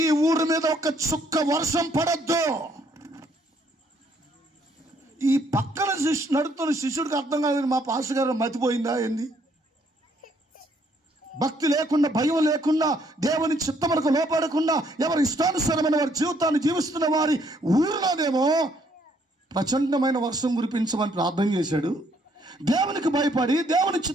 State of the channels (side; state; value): both; normal; correlation 0.68